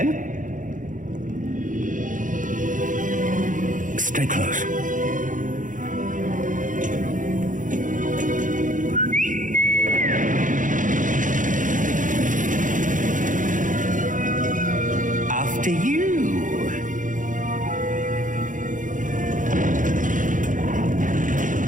Stay close. After you.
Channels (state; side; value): late; left; 0.38 ms